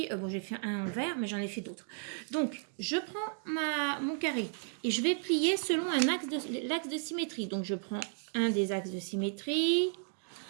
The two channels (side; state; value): left; silent; 55 dB below the other